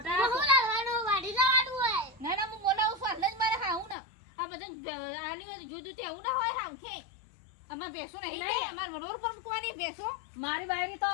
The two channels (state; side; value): drops out; right; at 4.0 s